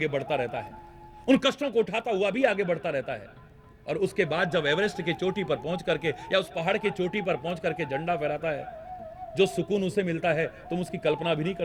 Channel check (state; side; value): identical; both; correlation 1.00